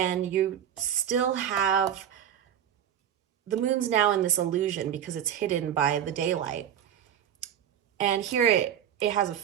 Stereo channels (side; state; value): left; quieter; 9.7 dB